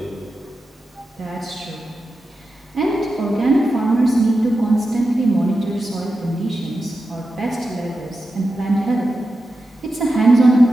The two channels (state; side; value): normal; both; correlation 0.91